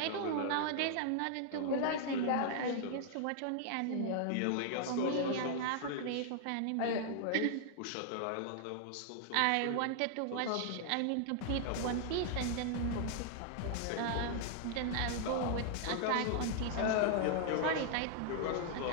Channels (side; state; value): both; different; correlation -0.01